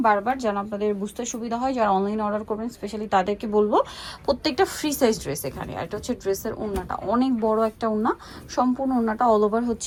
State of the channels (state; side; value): identical; both; correlation 1.00